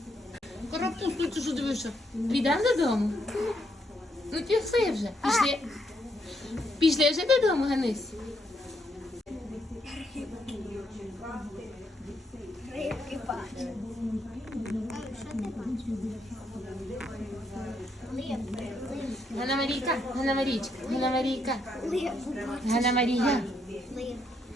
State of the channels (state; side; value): normal; both; correlation 0.76